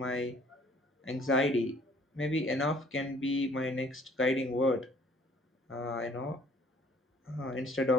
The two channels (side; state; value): both; normal; correlation 0.57